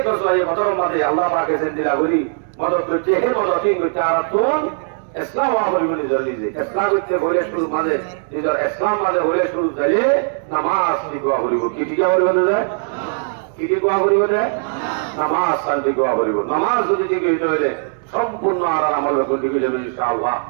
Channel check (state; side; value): silent; left; digital silence